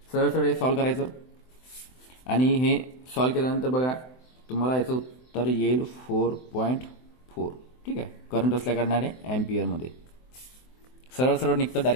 सरळ सरळ हे सॉल्व्ह करायचं आणि हे सॉल्व्ह केल्यानंतर बघा तुम्हाला याचं उत्तर येईल 4.4, ठीक आहे. करंट असल्या कारणाने अँपियरमध्ये सरळ सरळ निघतं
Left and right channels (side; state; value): right; late; 24 ms